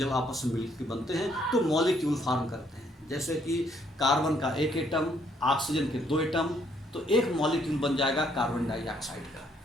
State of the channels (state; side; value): normal; both; correlation 0.68